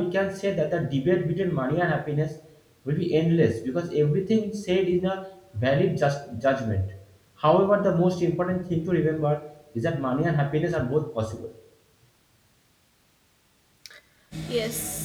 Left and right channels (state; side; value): identical; both; correlation 1.00